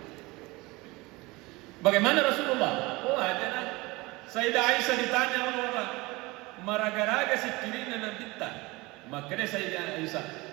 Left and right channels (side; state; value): left; quieter; 22.8 dB